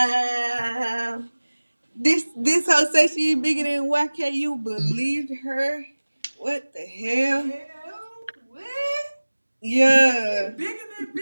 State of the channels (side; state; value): both; inverted; correlation -1.00